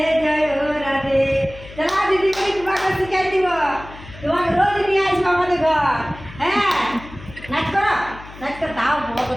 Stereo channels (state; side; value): noise; left; hum, 17 dB below the sound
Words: জয় রাধে। চলা দিদি করে তোমাকে শিখাই দিব, তোমাকে রোজ নিয়ে আসবো আমাদের ঘর। হ্যাঁ নাচ করো, নাচ করে দাও। বাবা